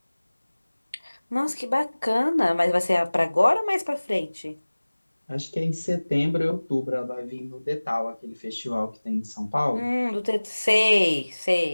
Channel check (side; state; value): both; inverted; correlation -1.00